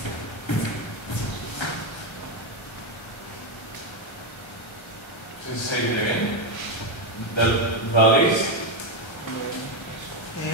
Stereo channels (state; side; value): late; right; 1.3 ms